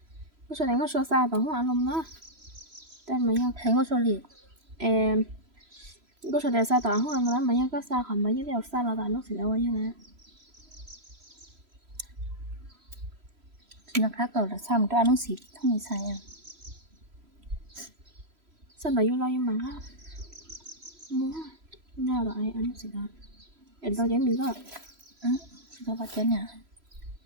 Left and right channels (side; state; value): left; late; 3.0 ms